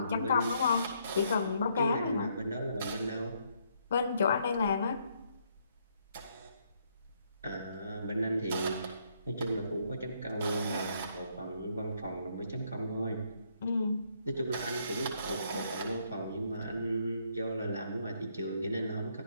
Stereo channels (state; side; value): inverted; both; correlation -0.72